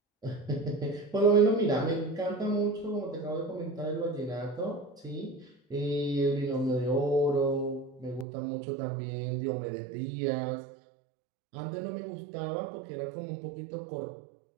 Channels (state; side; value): drops out; left; at 8.2 s